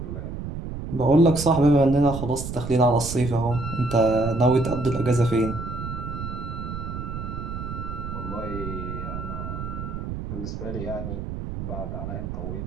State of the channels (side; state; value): right; noise; rumble, 6 dB below the sound